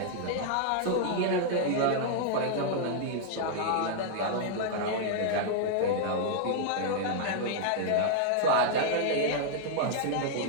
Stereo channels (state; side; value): different; both; correlation -0.01